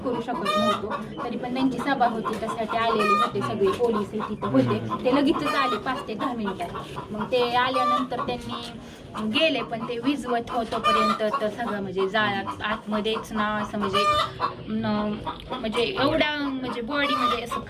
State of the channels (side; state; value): both; identical; correlation 1.00